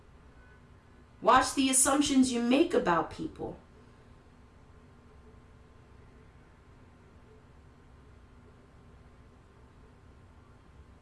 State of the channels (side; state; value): both; identical; correlation 1.00